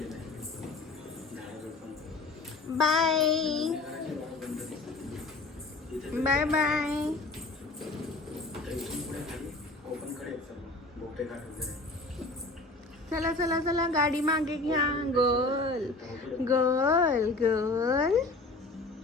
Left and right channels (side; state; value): right; quieter; 3.2 dB